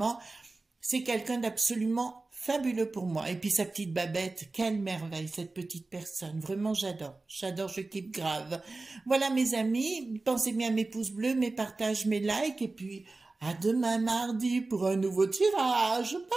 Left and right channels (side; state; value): left; quieter; 3.4 dB